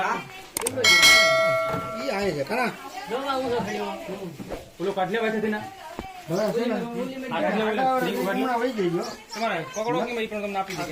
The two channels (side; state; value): both; identical; correlation 1.00